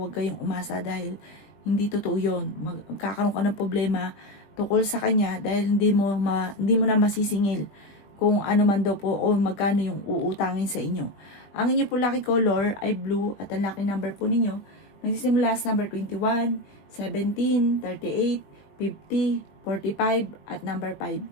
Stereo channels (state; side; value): late; right; 20 ms